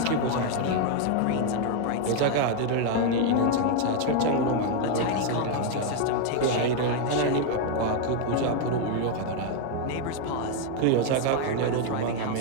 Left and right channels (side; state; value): both; different; correlation 0.00